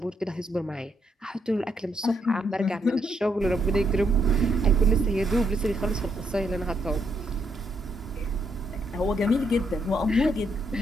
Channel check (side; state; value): both; normal; correlation 0.75